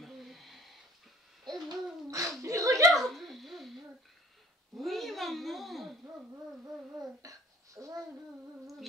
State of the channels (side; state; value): both; normal; correlation 0.51